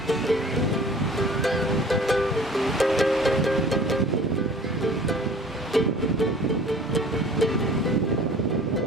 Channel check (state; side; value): normal; both; correlation 0.47